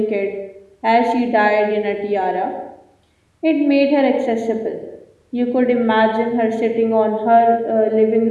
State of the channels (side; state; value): both; identical; correlation 1.00